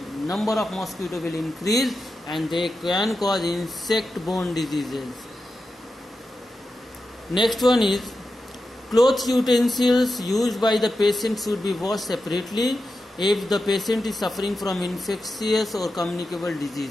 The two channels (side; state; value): both; normal; correlation 0.90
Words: number of mosquito will increase, and they can cause insect-borne diseases. Next one is cloth utensils used by the patient should be washed separately if the patient is suffering from infectious or communicable